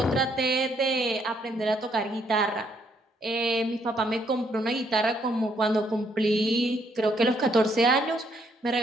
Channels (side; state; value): both; normal; correlation 0.71